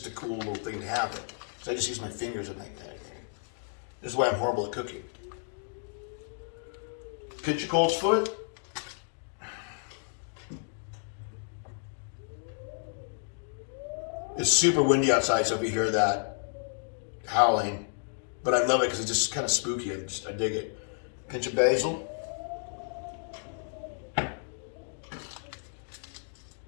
a cool little thing to have. So I just use my fingers and like that. This is why I'm horrible at cooking. Pinch your colt's foot. It's super windy outside, so if you hear that howling, but I love it because it's just kind of spooky. I dig it. Pinch of basil.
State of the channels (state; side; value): silent; right; digital silence